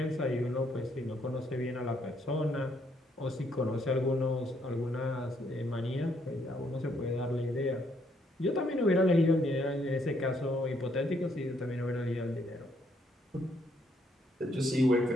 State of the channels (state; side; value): normal; both; correlation 0.71